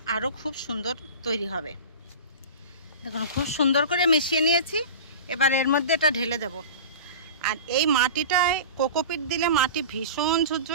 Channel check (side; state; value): both; inverted; correlation -0.33